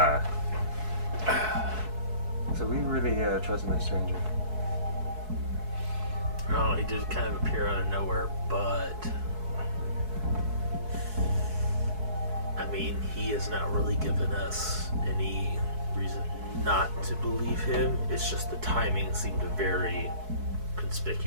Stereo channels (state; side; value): late; left; 4.6 ms